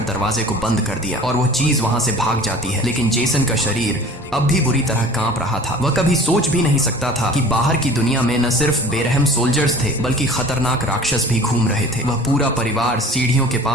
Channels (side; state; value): both; normal; correlation 0.44